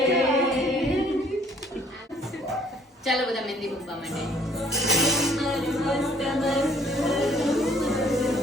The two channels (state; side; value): normal; both; correlation 0.60